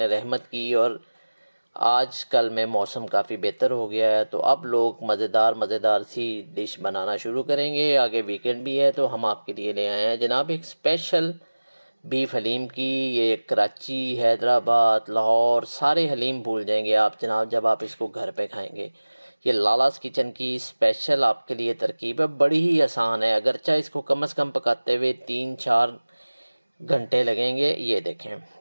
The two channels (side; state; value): both; inverted; correlation -1.00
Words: रहमत की और आज कल में मौसम काफ़ी बेहतर हो गया है। तो अब लोग मज़ेदार सी डिश बनाना शुरू करेंगे। आगे वीकेंड भी है तो हम आपके लिए ले आए हैं जनाब एक स्पेशल बीफ हलीम की। ये कराची, हैदराबाद, लाहौर सारे हलीम भूल जाएंगे आप जनाब जब आप इसको घर पे खाएंगे। ये लालास किचन की स्पेशल आपके लिए तरकीब है, बड़ी ही आसान है। अगरचा इसको कम से कम पकाते हुए 3-4 घंटे लगेंगे। ये देखें,